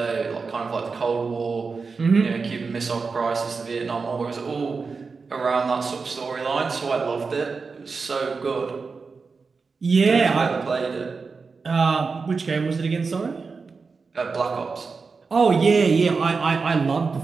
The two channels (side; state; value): left; quieter; 4.7 dB